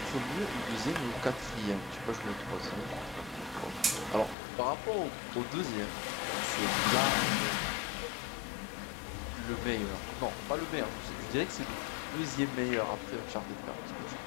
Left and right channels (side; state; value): right; drops out; at 4.4 s